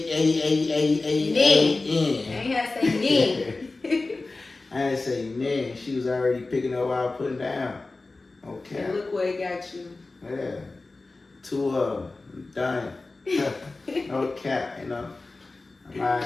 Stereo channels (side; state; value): right; quieter; 3.4 dB